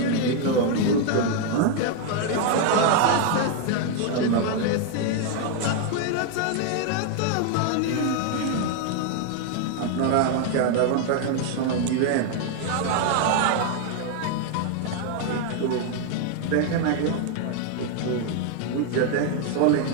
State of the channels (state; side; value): different; both; correlation 0.00